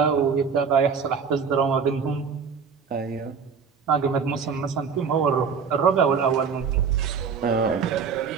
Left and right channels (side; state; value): left; quieter; 6.1 dB